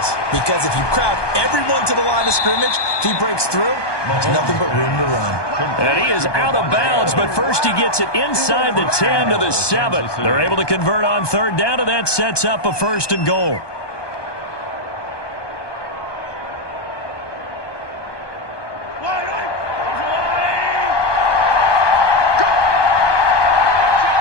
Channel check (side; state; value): right; late; 1.2 ms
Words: because if you crowd everyone to the line of scrimmage, if he breaks through, there's nothing but room to run. And he is out of bounds, but first he gets it inside the 10 to the 7. They're able to convert on third down, and that sets up a 1st and goal.